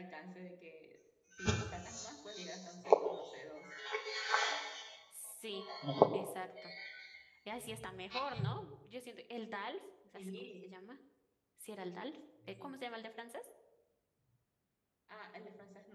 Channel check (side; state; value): both; identical; correlation 1.00